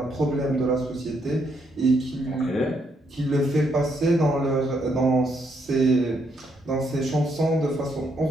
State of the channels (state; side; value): normal; both; correlation 0.75